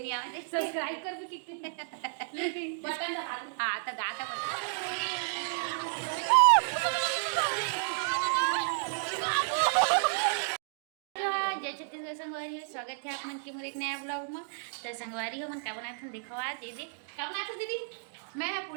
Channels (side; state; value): left; silent; digital silence